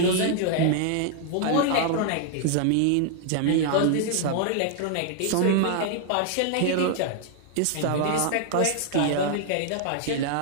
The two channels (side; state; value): both; different; correlation 0.00